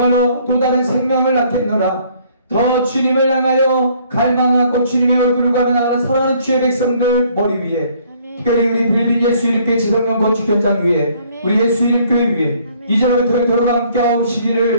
또 다른 생명을 낳겠노라. 더 주님을 향하여 갈망하고 주님의 얼굴을 가면하는 사랑하는 주의 백성들 머리 위에, 특별히 우리 빌린 예수 이름교회 지성령 건축 현장 위에, 우리 예수 이름교회 위에 이제부터 영토록 함께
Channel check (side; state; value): both; inverted; correlation -0.62